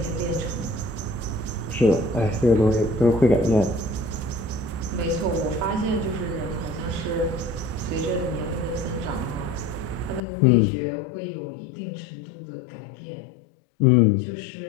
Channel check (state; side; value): drops out; right; at 10.2 s